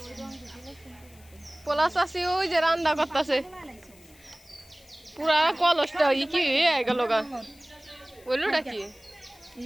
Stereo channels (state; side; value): noise; left; hiss, 26 dB below the sound